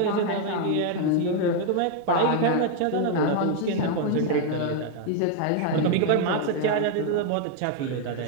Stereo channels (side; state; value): both; different; correlation 0.00